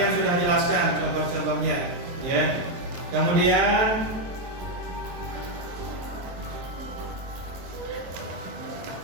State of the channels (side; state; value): left; late; 23 ms